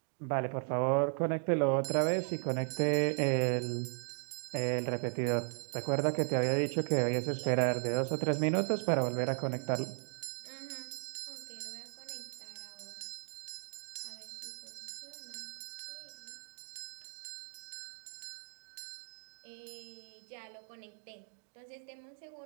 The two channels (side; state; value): left; silent; 53 dB below the other